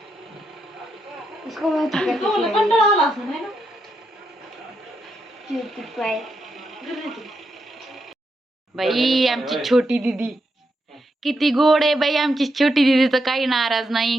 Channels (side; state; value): both; normal; correlation 0.82